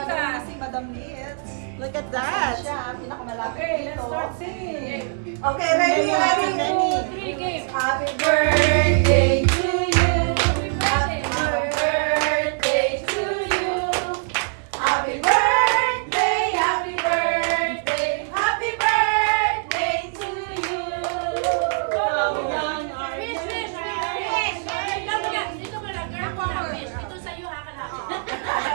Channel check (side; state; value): left; silent; 63 dB below the other